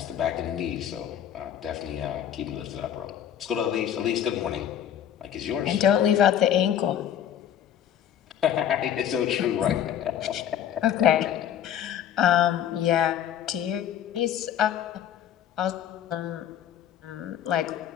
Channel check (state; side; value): quieter; right; 10.1 dB